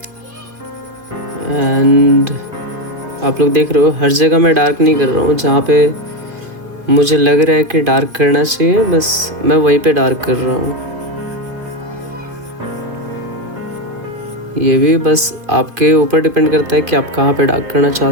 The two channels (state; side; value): late; left; 2.5 ms